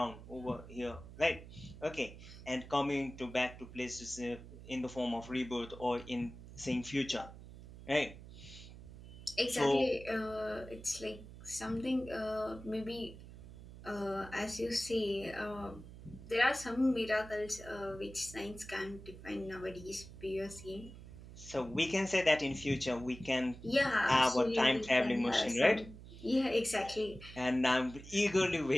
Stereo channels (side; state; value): right; noise; hum, 15 dB below the sound